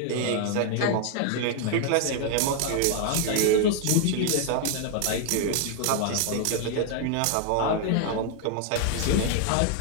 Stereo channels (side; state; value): both; different; correlation 0.00